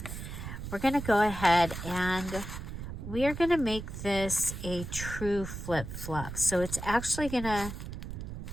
we're going to go ahead and we are going to make this a true flip-flop. So it's actually going to,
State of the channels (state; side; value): noise; right; rumble, 8 dB below the sound